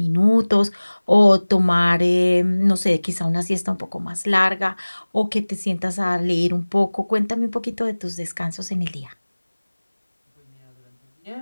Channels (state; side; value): inverted; both; correlation -1.00